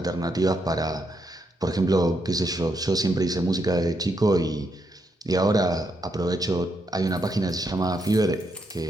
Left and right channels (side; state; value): both; normal; correlation 0.79